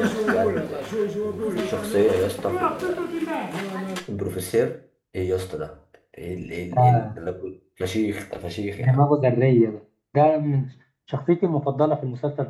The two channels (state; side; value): identical; both; correlation 1.00